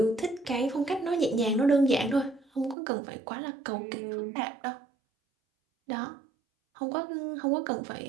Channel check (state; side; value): drops out; left; at 2.8 s